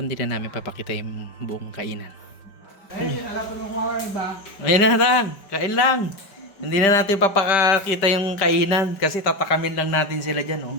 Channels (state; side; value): late; right; 5.1 ms